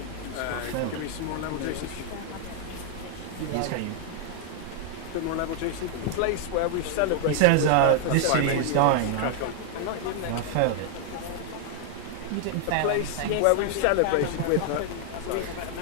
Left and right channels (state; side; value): different; both; correlation 0.00